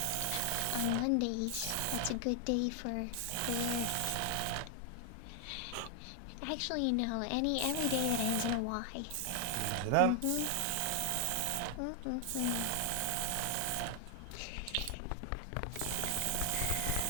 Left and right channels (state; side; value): different; both; correlation 0.00